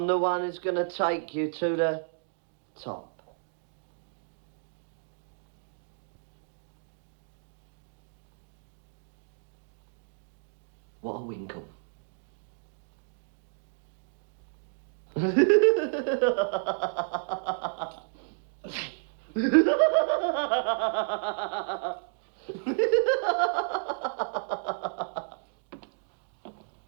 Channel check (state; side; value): silent; left; digital silence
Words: the one who's gonna take you to the top. What a winkle.